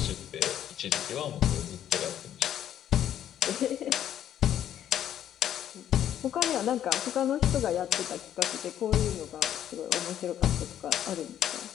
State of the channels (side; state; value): right; quieter; 10.7 dB